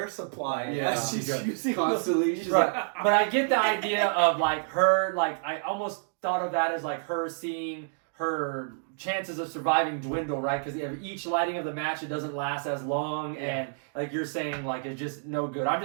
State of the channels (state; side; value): silent; left; digital silence